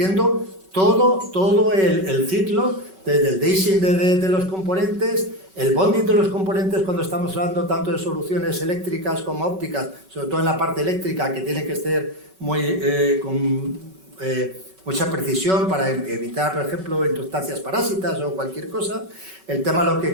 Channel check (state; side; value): late; left; 5.3 ms